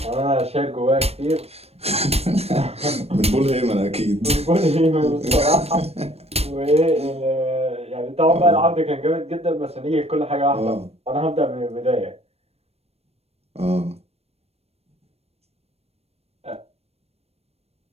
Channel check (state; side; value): late; left; 0.30 ms